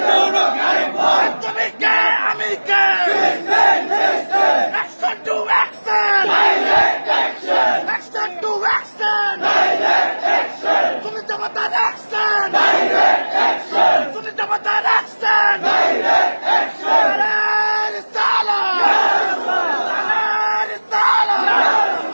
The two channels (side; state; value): both; inverted; correlation -1.00